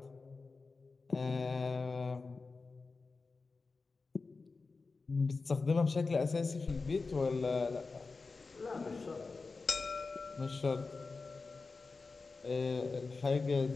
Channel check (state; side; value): quieter; right; 4.1 dB